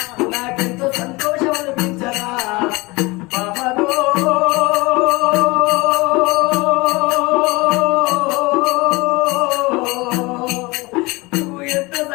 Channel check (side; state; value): right; quieter; 23.8 dB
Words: నాకెంతో సంతోషం అనిపించరా పాపదో నువ్వు ఎంత